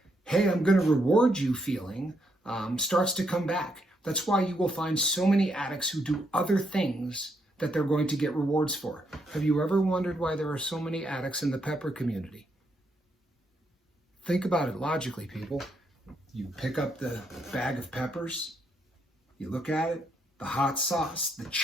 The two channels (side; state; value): both; normal; correlation 0.77